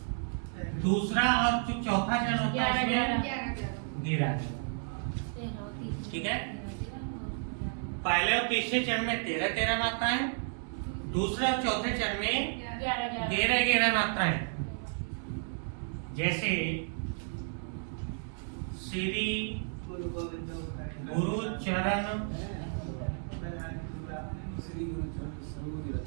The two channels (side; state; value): left; silent; 56 dB below the other